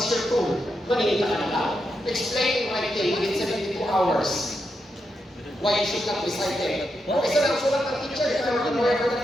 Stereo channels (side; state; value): both; normal; correlation 0.84